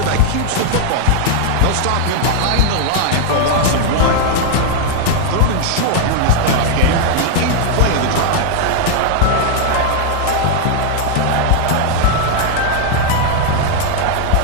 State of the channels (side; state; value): both; different; correlation 0.00